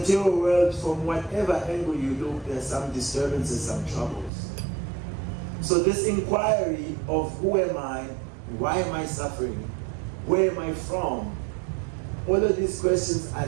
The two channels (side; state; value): left; drops out; at 4.3 s